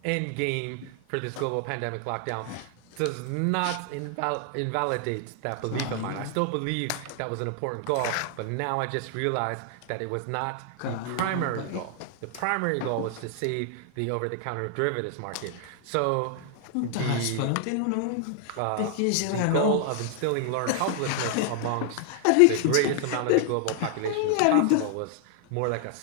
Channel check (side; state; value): both; different; correlation 0.00